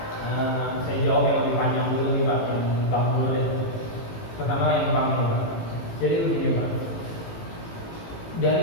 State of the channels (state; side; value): late; right; 18 ms